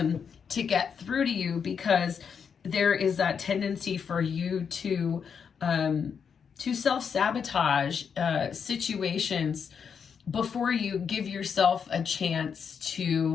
get through to you, because there is that tendency for you to self-sabotage situations before you give yourself a chance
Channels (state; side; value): quieter; right; 6.7 dB